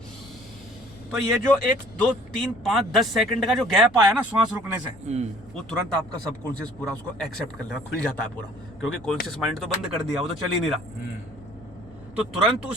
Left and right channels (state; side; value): noise; left; rumble, 23 dB below the sound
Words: तो ये जो 1 2 3 5 10 सेकंड का जो गैप आया ना श्वास रुकने से, वो तुरंत आपका सबकॉन्शियस पूरा उसको एक्सेप्ट कर लेगा, खुल जाता है पूरा, क्योंकि कॉन्शियस माइंड तो बंद कर दिया, वो तो चल ही नहीं रहा। तो तुरंत